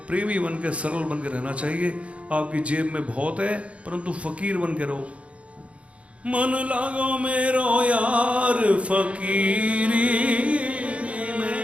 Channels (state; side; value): late; left; 0.063 ms